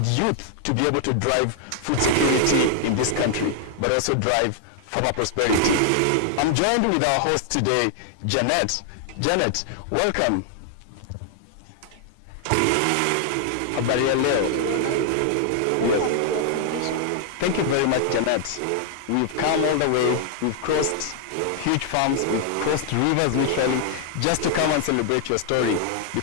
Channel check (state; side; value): different; both; correlation 0.00